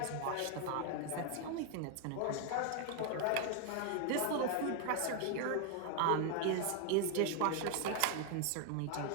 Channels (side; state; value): both; different; correlation 0.00